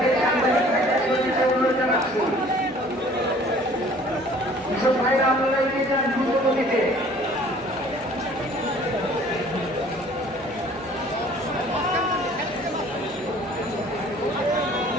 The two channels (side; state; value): both; normal; correlation 0.52